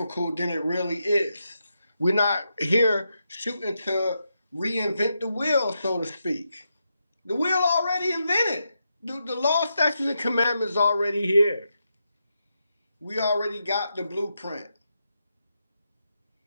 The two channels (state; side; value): inverted; both; correlation -0.85